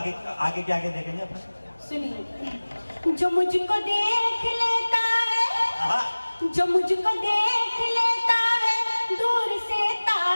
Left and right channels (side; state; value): both; inverted; correlation -1.00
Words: के आगे देखेंगे अपन। सुनिए, जो मुझको देख लेता है, जो मुझको देख लेता है दूर से